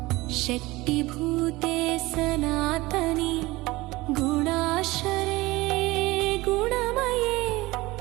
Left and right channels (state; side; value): quieter; left; 20.4 dB